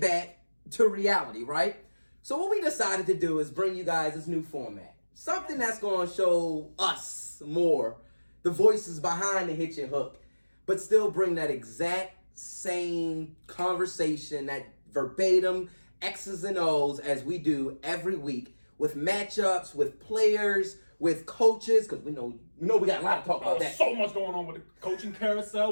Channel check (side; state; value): both; inverted; correlation -1.00